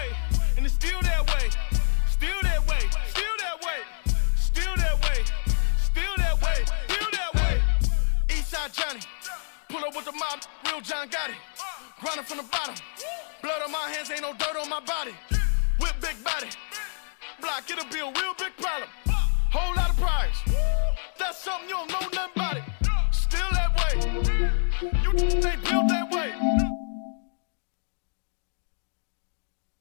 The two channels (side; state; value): right; silent; digital silence